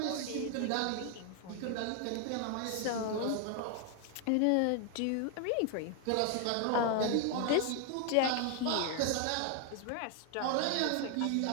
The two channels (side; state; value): both; different; correlation 0.00